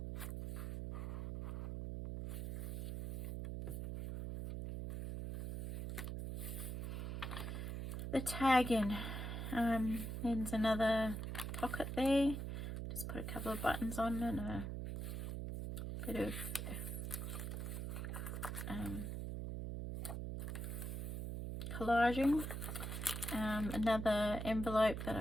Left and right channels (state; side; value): noise; right; hum, 4 dB below the sound